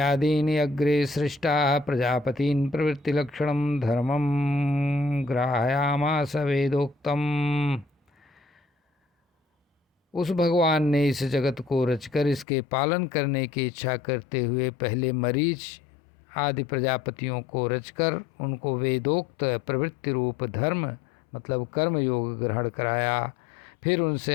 अग्रे सृष्टाः प्रजापतीन् प्रवृत्तिलक्षणं धर्मं ग्राहयामास वेदोक्तम्। उस भगवान ने इस जगत को रचकर इसके पालन करने की इच्छा करते हुए पहले मरीच आदि प्रजापतियों को रचकर उनको वेदोक्त प्रवृत्ति रूप धर्म मतलब कर्म योग ग्रहण कराया। फिर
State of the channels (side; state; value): right; drops out; at 12.5 s